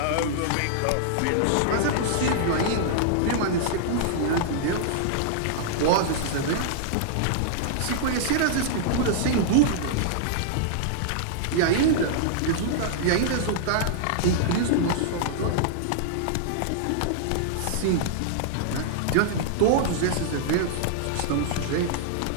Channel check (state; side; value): different; both; correlation -0.01